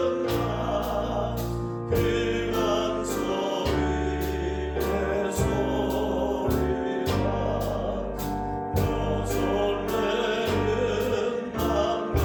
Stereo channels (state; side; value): identical; both; correlation 1.00